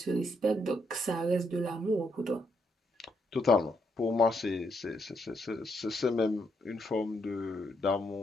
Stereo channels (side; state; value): both; normal; correlation 0.76